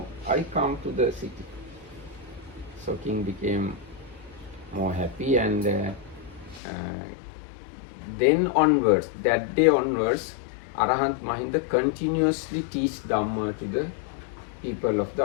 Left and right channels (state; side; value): drops out; right; at 6.6 s